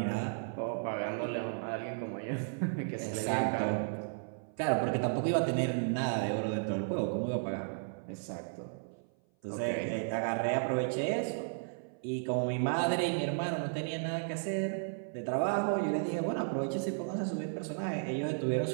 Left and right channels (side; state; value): left; silent; 55 dB below the other